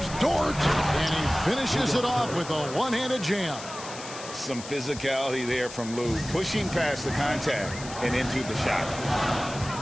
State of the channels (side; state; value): left; noise; hiss, 13 dB below the sound